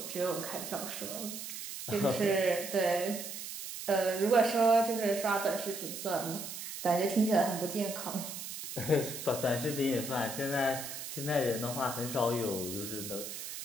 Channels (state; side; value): noise; right; hiss, 8 dB below the sound